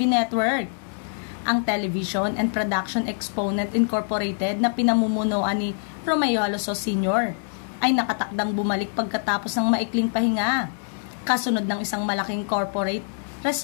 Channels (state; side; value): silent; right; digital silence